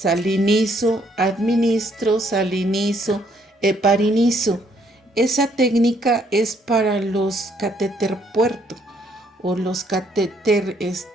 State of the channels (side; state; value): both; normal; correlation 0.68